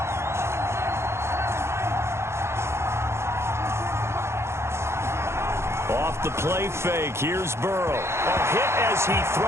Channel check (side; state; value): left; late; 0.13 ms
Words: Off the play fake, here's Burrow. A hit as he